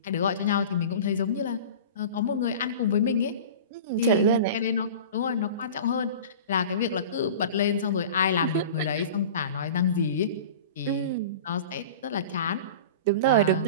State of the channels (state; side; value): inverted; both; correlation -0.36